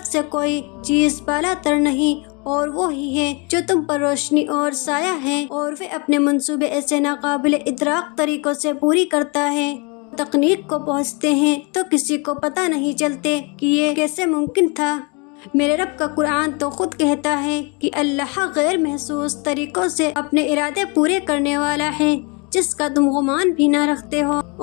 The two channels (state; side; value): quieter; right; 31.5 dB